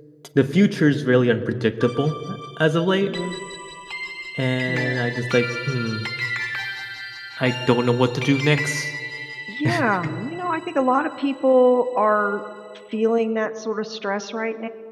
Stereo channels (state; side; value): identical; both; correlation 1.00